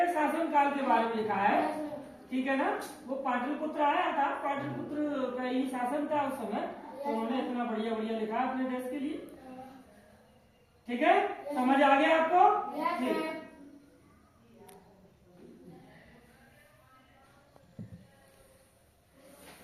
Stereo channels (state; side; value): identical; both; correlation 1.00